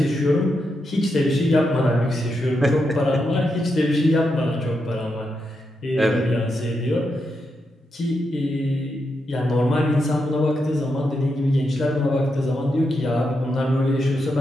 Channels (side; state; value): both; normal; correlation 0.84